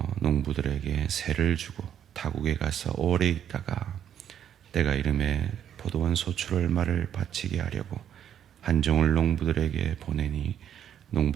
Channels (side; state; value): left; quieter; 9.6 dB